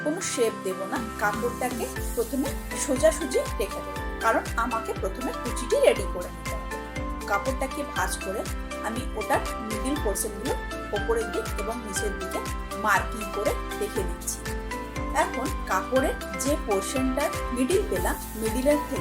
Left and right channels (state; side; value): identical; both; correlation 1.00